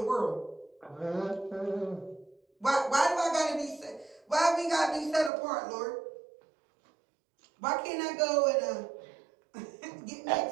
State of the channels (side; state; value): left; drops out; at 5.3 s